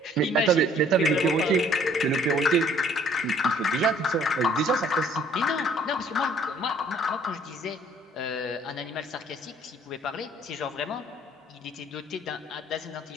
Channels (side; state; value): both; normal; correlation 0.59